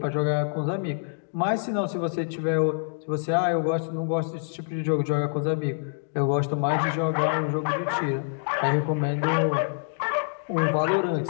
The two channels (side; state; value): right; silent; digital silence